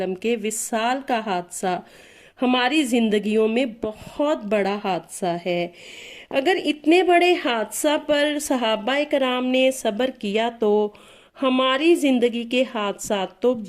کے وصال کا حادثہ ہماری زندگیوں میں بہت بڑا حادثہ ہے۔ اگر اتنے بڑے حادثہ پر صحابہ کرام نے صبر کیا تو ہماری زندگی کے حادثات تو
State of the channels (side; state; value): both; identical; correlation 1.00